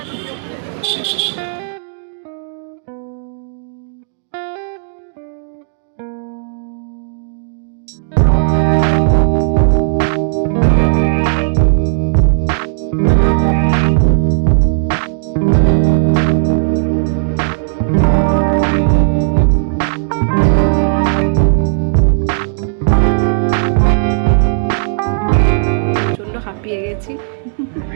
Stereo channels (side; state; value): left; silent; digital silence